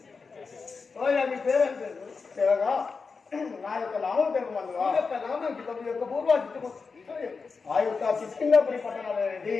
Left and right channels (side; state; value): right; quieter; 4.8 dB